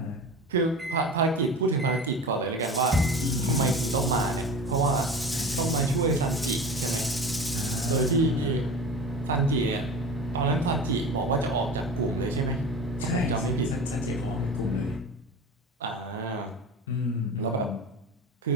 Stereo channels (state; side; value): normal; both; correlation 0.33